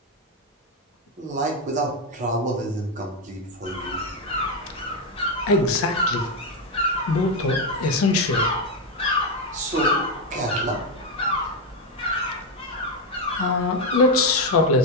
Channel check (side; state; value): both; normal; correlation 0.06